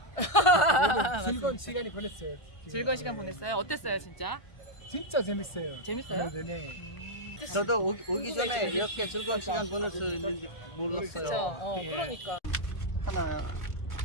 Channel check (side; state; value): right; late; 1.4 ms